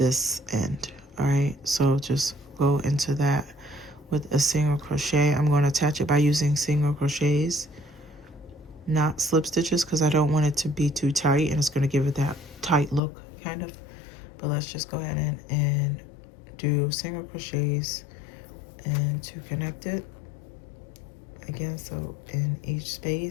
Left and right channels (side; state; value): right; drops out; at 13.0 s